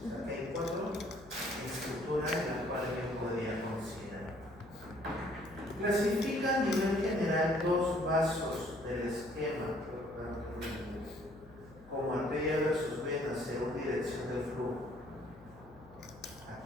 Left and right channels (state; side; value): noise; left; hum, 21 dB below the sound